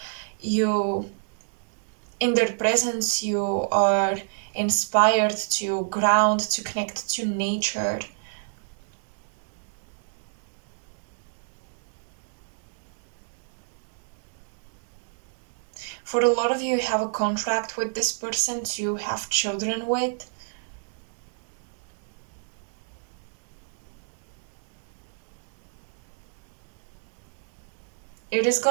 In their presence, you are inspired to ground, to connect to nature. For a lot of you, you have a contract with this person to have children with. It is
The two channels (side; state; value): left; silent; digital silence